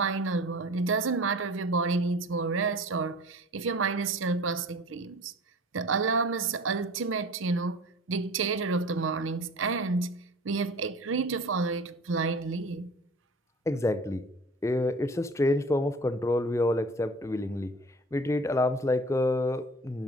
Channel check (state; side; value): normal; both; correlation 0.41